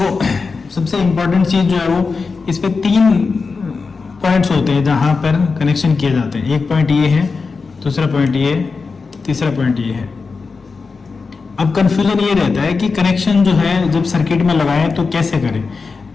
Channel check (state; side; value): quieter; right; 4.6 dB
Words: सबसे इंपॉर्टेंट चीज जो है वो इस पे 3 पॉइंट्स होते हैं जहां पर कनेक्शन किए जाते हैं। एक पॉइंट ये है, दूसरा पॉइंट ये, तीसरा पॉइंट ये है। अब कंफ्यूजन ये रहता है कि कनेक्शन जो है जब सर्किट में लगाएं तो कैसे करें।